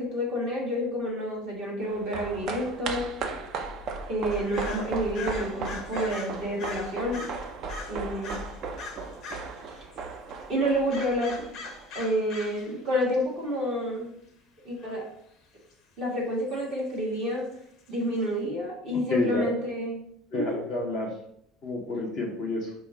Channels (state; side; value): normal; both; correlation 0.41